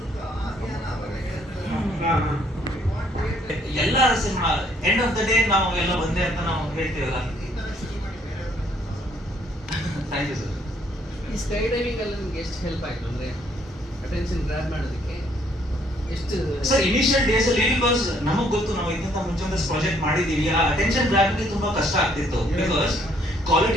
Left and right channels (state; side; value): normal; both; correlation 0.66